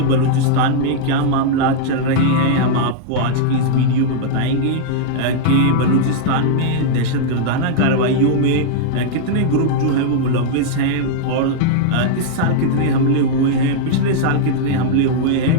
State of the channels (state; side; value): different; both; correlation -0.01